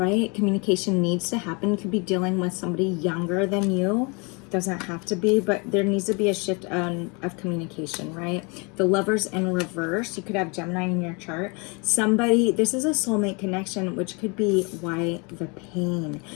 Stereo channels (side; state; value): right; quieter; 30.9 dB